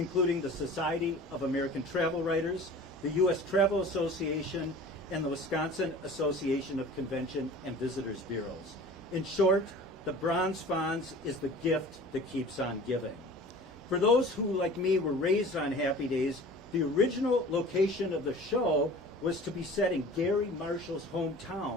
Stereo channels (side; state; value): both; normal; correlation 0.42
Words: the Society of American Travel Writers, the U.S. Travel Association, and the Wisconsin Association of Convention and Visitors Bureaus. In short, the Bronze Fonz is the gift that keeps on giving. For those who, like me, were raised on Happy Days, the original location of the show was to be set in Gary Marshall's